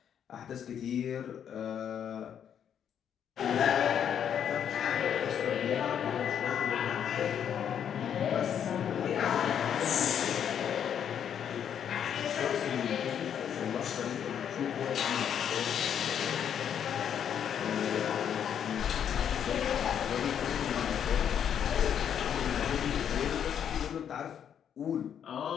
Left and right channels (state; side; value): quieter; right; 8.8 dB